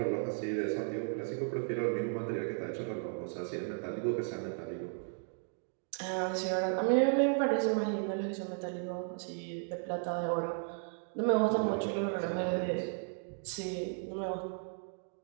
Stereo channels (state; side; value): silent; left; 55 dB below the other